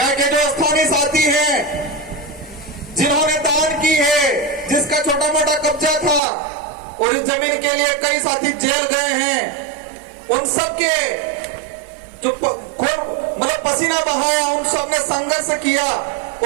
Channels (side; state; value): left; drops out; at 6.2 s